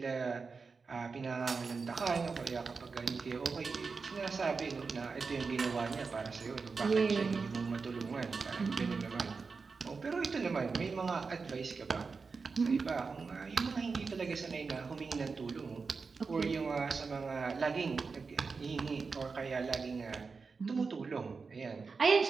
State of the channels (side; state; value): left; quieter; 4.7 dB